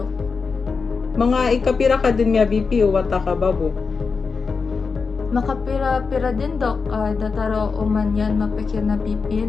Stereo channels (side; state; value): right; quieter; 4.9 dB